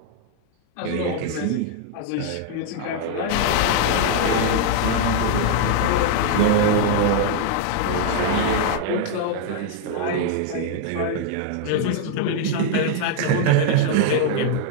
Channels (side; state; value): both; different; correlation 0.00